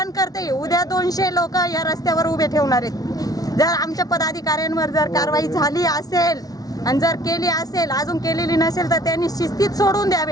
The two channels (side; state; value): right; late; 0.18 ms